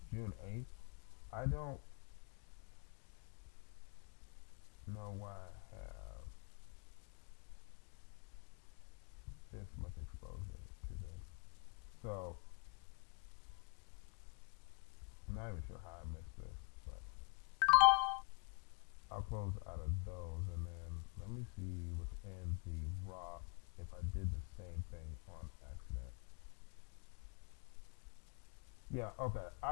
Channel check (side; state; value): right; quieter; 38.7 dB